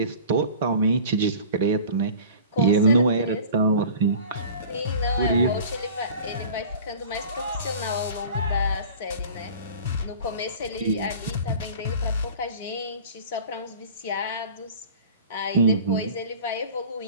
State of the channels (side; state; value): both; inverted; correlation -0.42